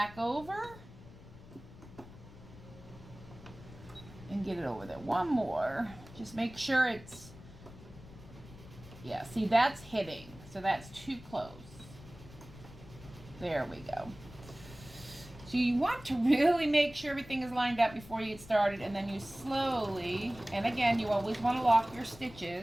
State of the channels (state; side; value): noise; left; rumble, 18 dB below the sound